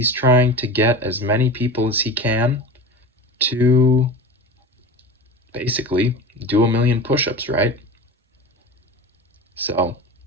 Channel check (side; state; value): both; normal; correlation 0.32